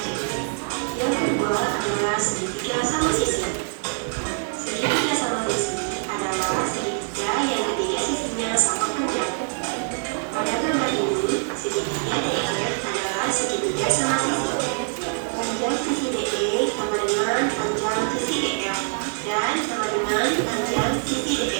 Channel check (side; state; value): left; silent; 56 dB below the other